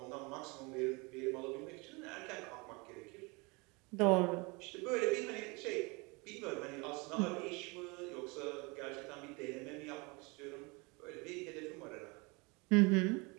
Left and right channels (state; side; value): quieter; left; 27.7 dB